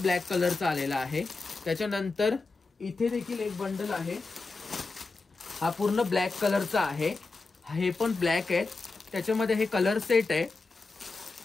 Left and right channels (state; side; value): quieter; right; 3.8 dB